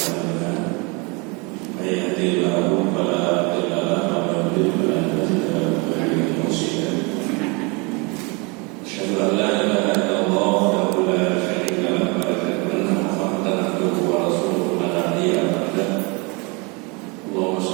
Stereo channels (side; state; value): left; quieter; 29.4 dB